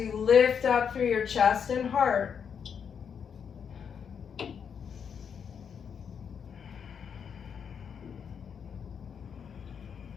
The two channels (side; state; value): right; quieter; 7.2 dB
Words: lift up through your chest and heart.